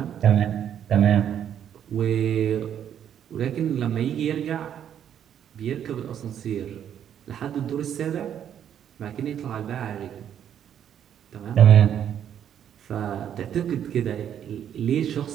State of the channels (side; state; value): left; quieter; 9.5 dB